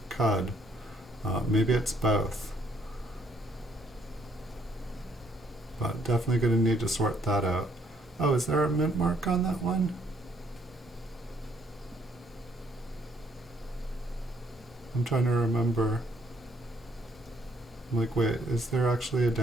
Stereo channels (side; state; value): both; normal; correlation 0.68